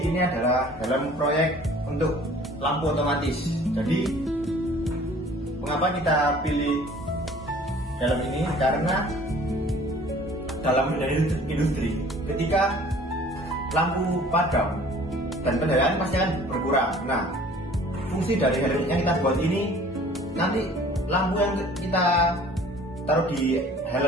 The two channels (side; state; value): both; normal; correlation 0.50